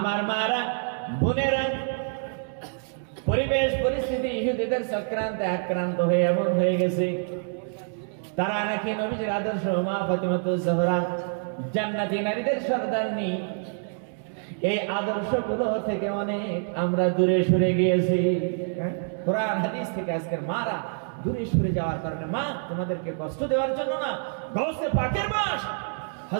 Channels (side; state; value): left; silent; 60 dB below the other